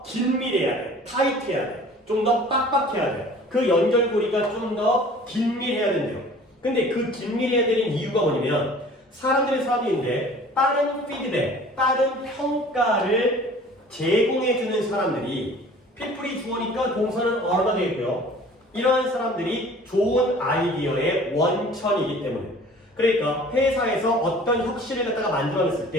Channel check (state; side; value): normal; both; correlation 0.47